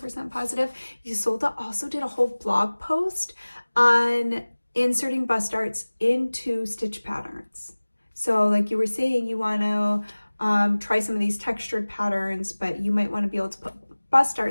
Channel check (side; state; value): both; inverted; correlation -1.00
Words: positive, Isolde also did a whole blog post on inserting bust starts into stitch patterns. So like you were saying, you want to try some of these textured patterns, but you might want to be able to put bust